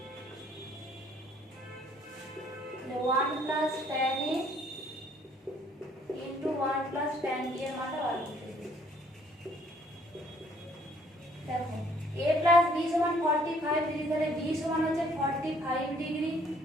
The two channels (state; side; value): normal; both; correlation 0.62